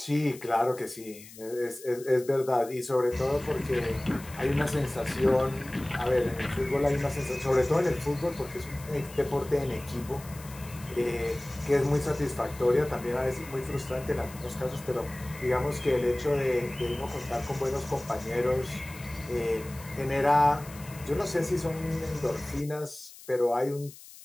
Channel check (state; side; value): noise; left; hiss, 18 dB below the sound